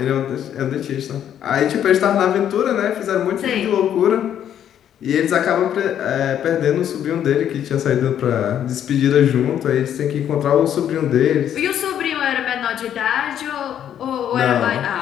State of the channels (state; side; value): quieter; right; 10.0 dB